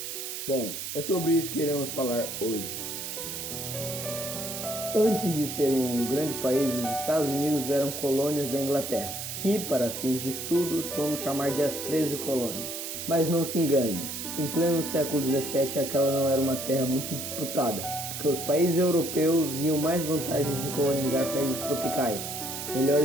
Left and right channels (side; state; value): right; noise; hiss, 6 dB below the sound